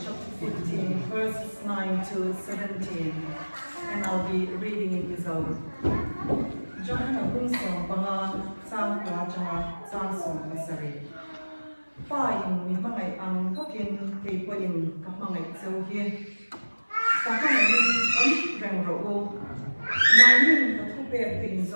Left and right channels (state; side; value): inverted; both; correlation -1.00